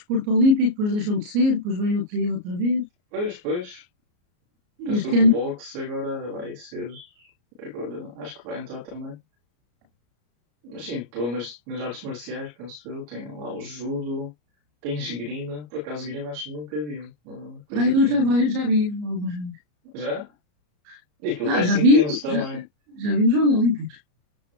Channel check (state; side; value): late; left; 34 ms